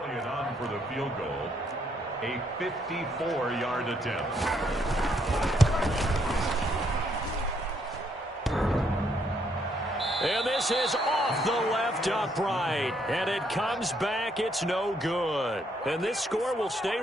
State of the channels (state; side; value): normal; both; correlation 0.72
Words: on for the field goal. A 54-yard attempt. And this is off the left upright. And it comes back. It's no good. And this score will stay